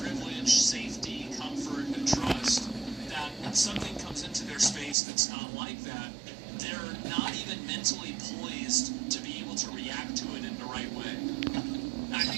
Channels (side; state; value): left; drops out; at 5.0 s